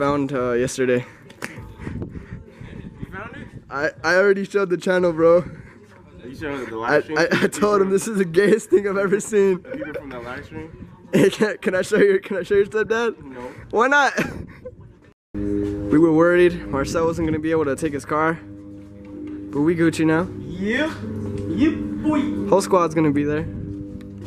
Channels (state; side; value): identical; both; correlation 1.00